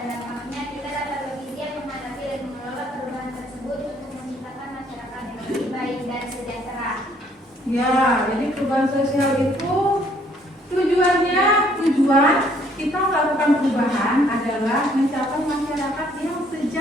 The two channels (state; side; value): normal; both; correlation 0.64